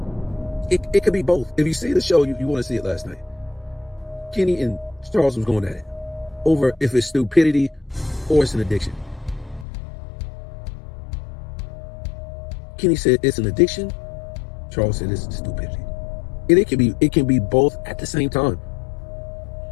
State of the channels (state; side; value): drops out; right; at 9.7 s